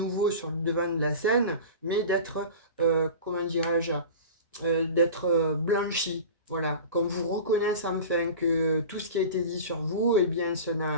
sur le devant de la scène, mais d'être, comment dirais-je, d'être blanchi. Voilà, qu'on vous reconnaisse enfin que tout ce qui a été dit sur vous, eh bien, ça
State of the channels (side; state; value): both; inverted; correlation -0.34